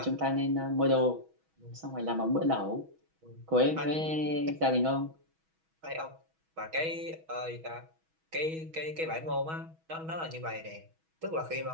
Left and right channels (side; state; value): left; late; 6.2 ms